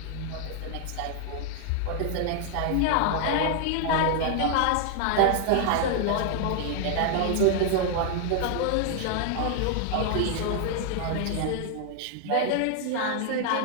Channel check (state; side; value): different; both; correlation 0.00